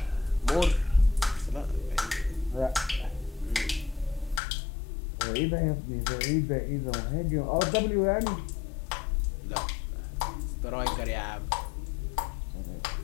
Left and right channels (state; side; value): drops out; right; at 4.4 s